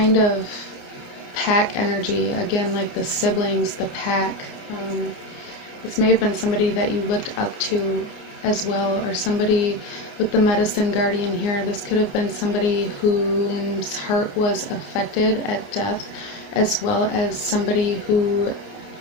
of pack energy, again, like the siblings, the pack. This may have been somebody that you looked up to as well, or somebody with the medicine guardian here. This could have been somebody whose heart was affected at death, as well as somebody who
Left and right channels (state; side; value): late; right; 29 ms